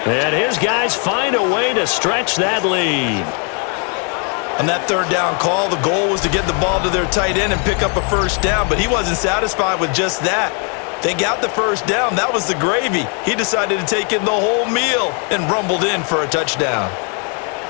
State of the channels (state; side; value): quieter; right; 38.9 dB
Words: And his guys find a way to stretch that lead. On that 3rd down call, the goal was to get the ball to their tight end and pick up a first down, but he wasn't satisfied with just that. They got the first down. That was the gravy. He decided to take in the whole meal and rumbled in for a touchdown.